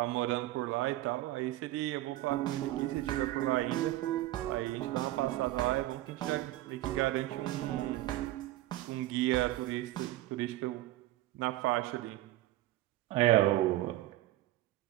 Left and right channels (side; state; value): left; quieter; 16.0 dB